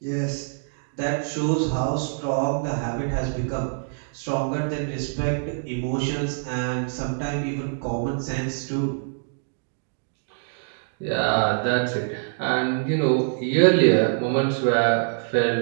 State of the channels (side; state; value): left; silent; digital silence